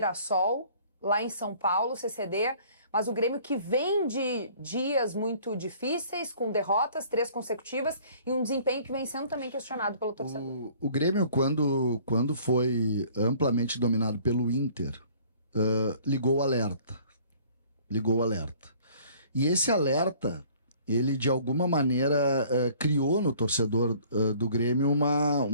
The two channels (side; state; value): both; inverted; correlation -0.54